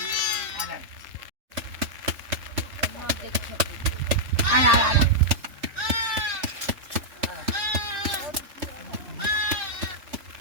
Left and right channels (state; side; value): late; left; 3.4 ms